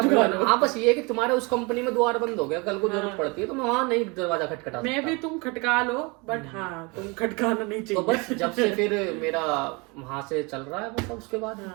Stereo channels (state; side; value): quieter; left; 28.4 dB